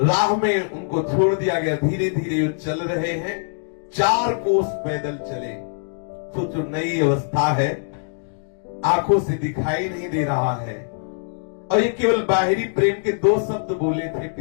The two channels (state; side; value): silent; right; digital silence